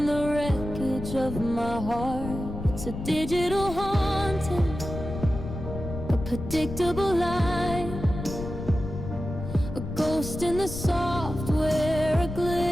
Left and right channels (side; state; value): left; noise; rumble, 8 dB below the sound